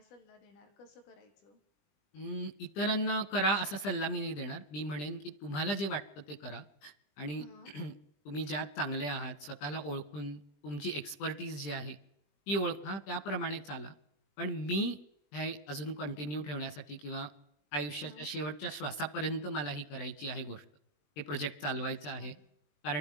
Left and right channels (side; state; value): right; late; 20 ms